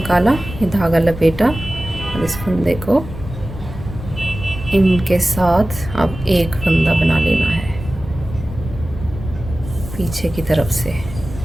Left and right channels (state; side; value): noise; left; rumble, 11 dB below the sound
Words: ये धागा लपेटा और इस फंदे को इनके साथ अब एक फंदा बना लेना है पीछे की तरफ से।